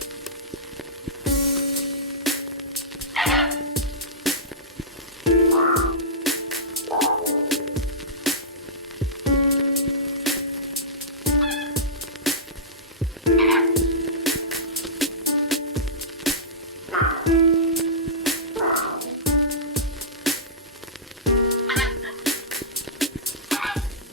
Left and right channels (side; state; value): both; normal; correlation -0.18